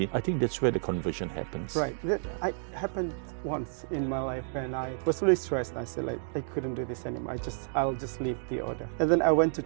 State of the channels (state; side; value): silent; left; digital silence